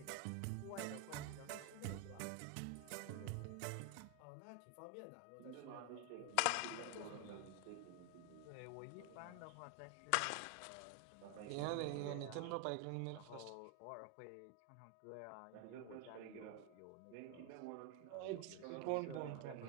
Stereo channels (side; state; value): both; different; correlation 0.01